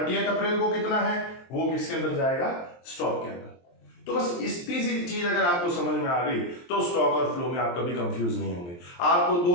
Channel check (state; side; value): late; right; 23 ms